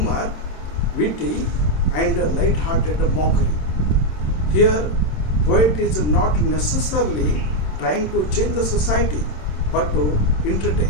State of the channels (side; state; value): right; late; 27 ms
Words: witty, and light-hearted mockery. Here, poet is not necessarily trying to change the society, but to